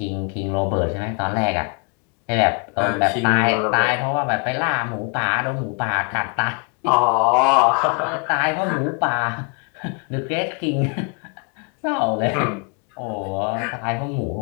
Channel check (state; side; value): quieter; right; 35.9 dB